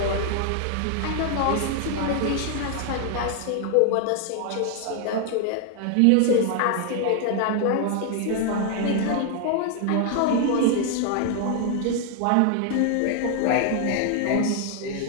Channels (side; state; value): both; different; correlation 0.00